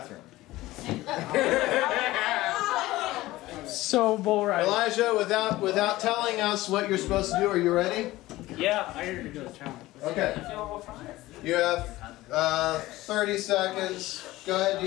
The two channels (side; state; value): right; quieter; 17.6 dB